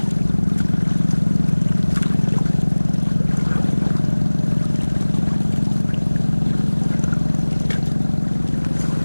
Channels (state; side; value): inverted; both; correlation -1.00